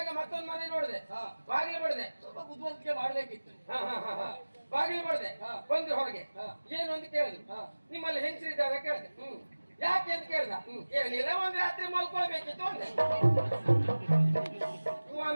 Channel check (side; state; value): both; inverted; correlation -1.00